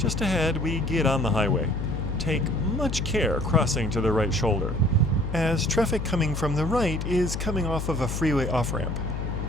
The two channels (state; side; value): noise; left; hum, 4 dB below the sound